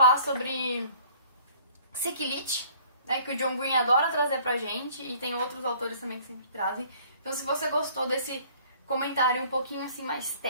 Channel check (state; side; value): inverted; both; correlation -0.55